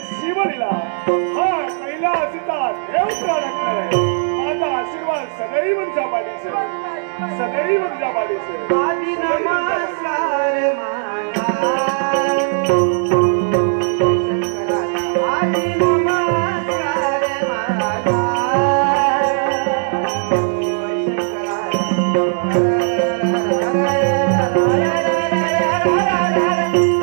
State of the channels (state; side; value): silent; left; digital silence